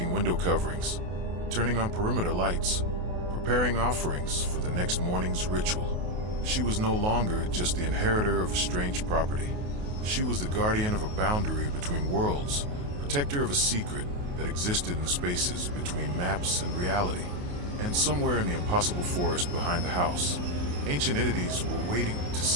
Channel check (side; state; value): left; late; 28 ms